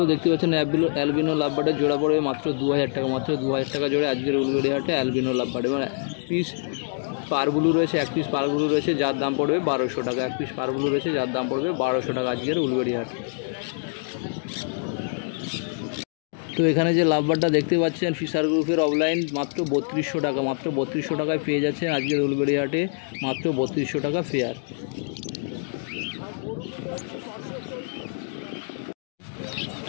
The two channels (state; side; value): silent; right; 62 dB below the other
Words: দেখতে পাচ্ছেন, অ্যালবিনো লাভবার্ডের জোড়া পড়বে মাত্র 2,000 টাকা। মাত্র 2,000 টাকা জোড়া আজকের উলবেড়িয়া হাটে অ্যালবিনো লাভবার্ড। এবং পিস পারগুলো রয়েছে, এক পিস পারগুলো রয়েছে যার দাম পড়বে 1200 টাকা। এক পিস পারগুলো রয়েছে যার দাম পড়বে 1200 টাকা আজকের উলবেড়িয়া হাটে। তো এখানে যে লাভবার্ডটা দেখতে পাচ্ছেন ফিশার গ্রুপের অফলাইন, মাত্র 3200 টাকা। মাত্র 3200 টাকায় পেয়ে যাচ্ছেন আজকের উলবেড়িয়া হাটে, মাত্র 3200 টাকা ফেয়ার।